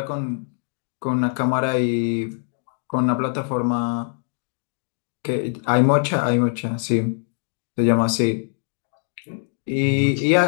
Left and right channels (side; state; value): right; silent; 57 dB below the other